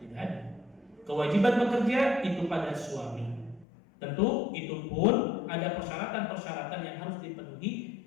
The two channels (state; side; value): drops out; right; at 3.7 s